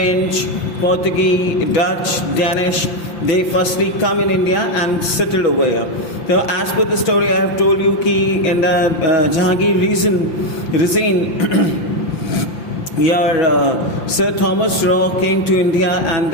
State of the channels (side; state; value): right; late; 5.8 ms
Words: Portuguese, Dutch, Danish, they firstly come in India and settled over here. So as per the story I have told you, in the Jahangir regime, here Sir Thomas Raw came to India and